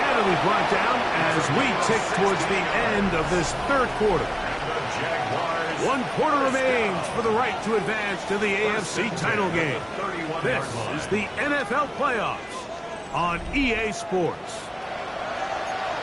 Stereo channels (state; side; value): identical; both; correlation 1.00